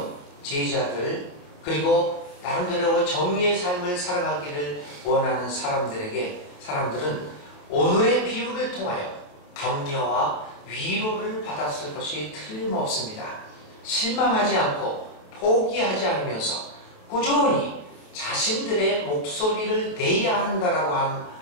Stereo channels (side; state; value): right; late; 28 ms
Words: 제자들 그리고 나름대로 정의의 삶을 살아가기를 원하는 사람들은 오늘의 비유를 통하여 격려와 위로를 받았을 것이 틀림없습니다. 실망하지 않고 포기하지 않으면서 꾸준히 자신들의 목소리를 내야 한다라고